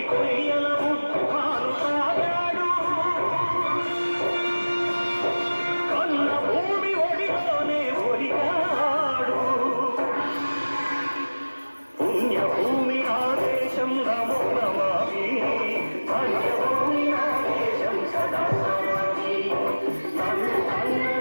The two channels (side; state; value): both; inverted; correlation -1.00